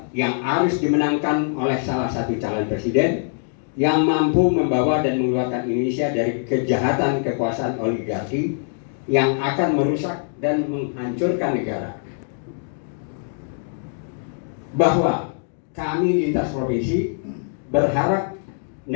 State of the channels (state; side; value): silent; right; digital silence